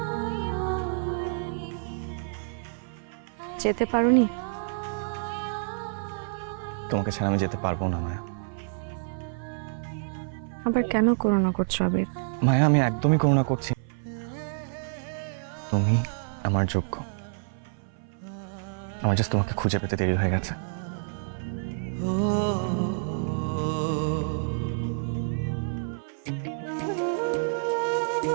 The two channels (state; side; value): silent; left; 55 dB below the other